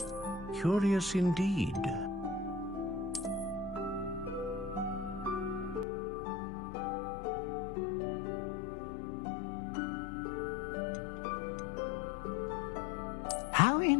Curious indeed. How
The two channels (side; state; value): right; drops out; at 5.9 s